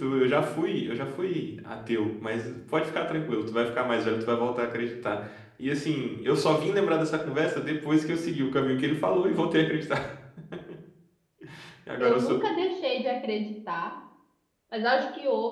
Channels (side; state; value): both; identical; correlation 1.00